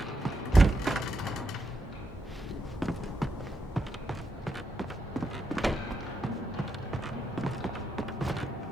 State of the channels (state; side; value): normal; both; correlation 0.82